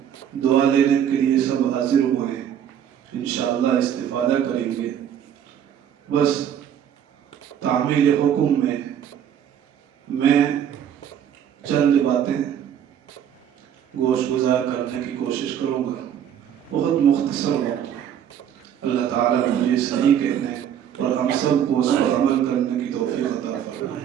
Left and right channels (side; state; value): left; quieter; 9.4 dB